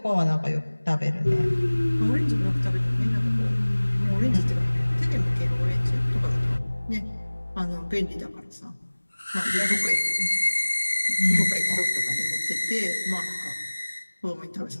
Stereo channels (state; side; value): inverted; both; correlation -1.00